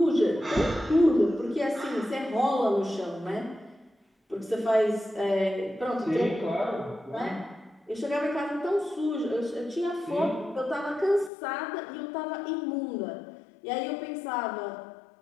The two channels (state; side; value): drops out; right; at 11.3 s